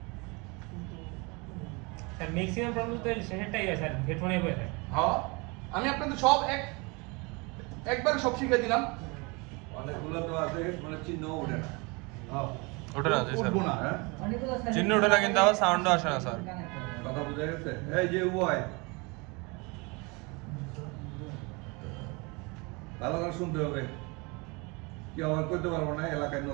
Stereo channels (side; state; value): left; quieter; 28.3 dB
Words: স্যার ম্যাক্সিমাম প্রবলেম তো সেটাই হয় স্যার, হেডফোনে হয়ে থাকে। হ্যাঁ, আমি আপনাদের সব একবার সব শিখিয়ে দিলাম। অনেকগুলো তো আছে মানে চিহ্ন ওঠে না। ওঠে না জি স্যার, উঠবো না। চিহ্ন ওঠে না কিন্তু আবার সাউন্ডও আসে না স্যার। কথা বোঝা গেছে? এই যে ওয়াই ভালো করে শুনতে হবে, কি আমার করতে পারবো না, এলাকায়